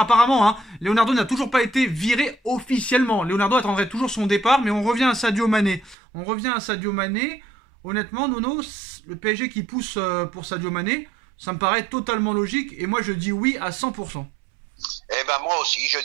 hein, Leonardo n'a toujours pas été viré officiellement. Leonardo attendrait toujours son départ, mais on revient à Sadio Mané. Honnêtement, Nono, le PSG qui pousse pour Sadio Mané, ça me paraît totalement logique. Et moi, je dis oui à 100%. Eh ben moi aussi, je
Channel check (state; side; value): drops out; left; at 6.0 s